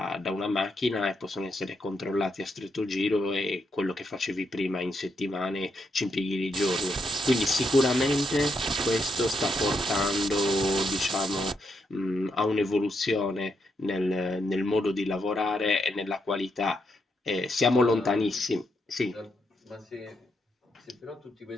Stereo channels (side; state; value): both; normal; correlation 0.80